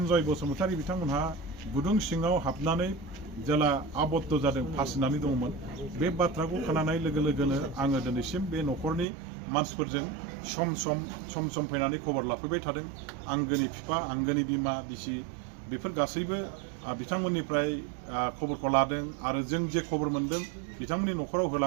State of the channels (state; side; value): drops out; left; at 9.1 s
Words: बसुमतारी बिथांमोनहा गुदुं सिङाव हाबनानै जेला आबद्ध जादों फासिनानै दंमोन बे बाथ्राखौ खोनानाय लोगो लोगोनो आङो दिनैसिम बे न'खरनि मानसिफोरजों सम सम फैनानै खबर लाफैबाय थादों। आंगोनि बिफा आंगोनि बिमा बिसि बेफोर गासैबो बिथांमोननिफ्राय खबरखौ लादों आरो जों जे खबर मोनदों बिथांमोननि न'खराव